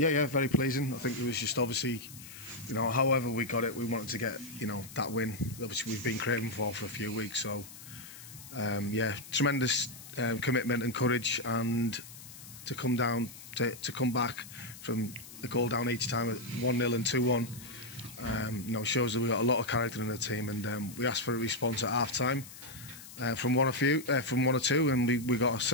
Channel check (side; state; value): left; noise; hiss, 16 dB below the sound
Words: very pleasing. I think it was just obviously, however we got it, we wanted to get, that win. Obviously, we've been craving for a few weeks. So, tremendous commitment and courage, and to come down, to come back from the goal down each time at 1-0 and 2-1, shows that we've got a lot of character in the team. And we asked for a response at half time. From one or two, and we got a